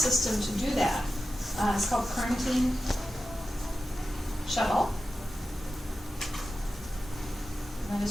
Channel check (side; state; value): both; normal; correlation 0.93